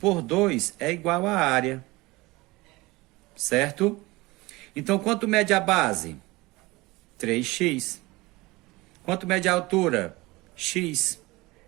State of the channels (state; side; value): quieter; left; 21.8 dB